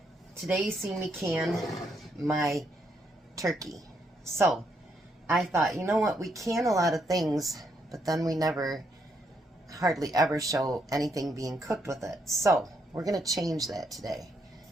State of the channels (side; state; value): both; normal; correlation 0.76